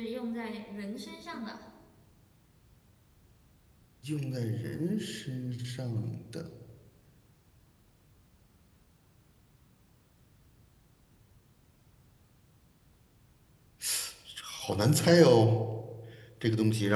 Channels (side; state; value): both; identical; correlation 1.00